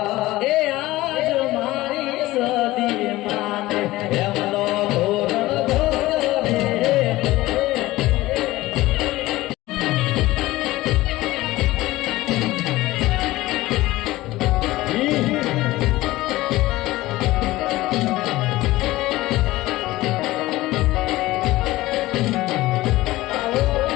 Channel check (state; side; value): quieter; right; 17.9 dB